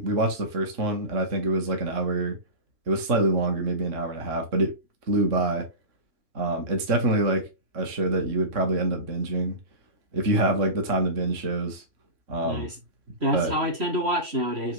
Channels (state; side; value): late; left; 3.0 ms